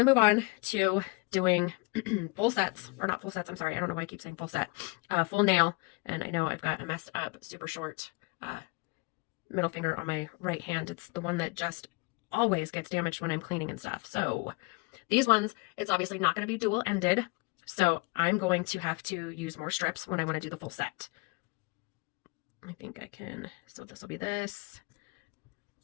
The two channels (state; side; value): quieter; right; 27.8 dB